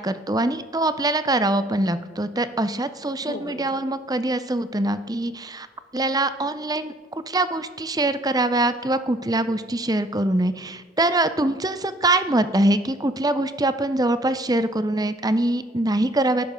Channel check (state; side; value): normal; both; correlation 0.59